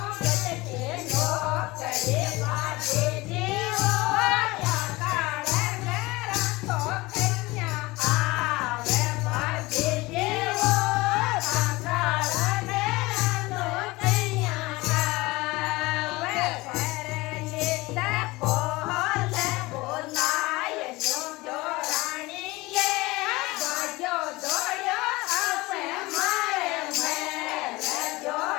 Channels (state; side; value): quieter; right; 21.4 dB